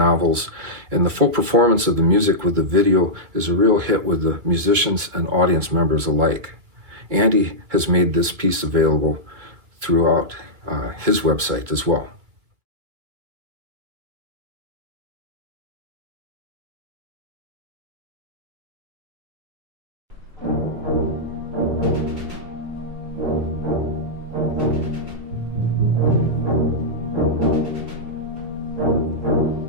and the full performance of the music with the video is a real hit with the musicians and audience members alike. Andy has made this piece available throughout his website as well.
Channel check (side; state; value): left; late; 2.5 ms